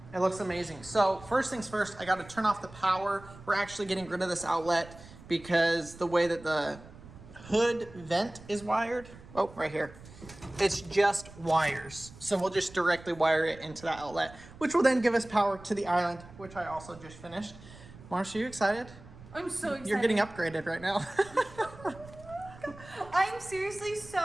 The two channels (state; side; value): noise; right; rumble, 19 dB below the sound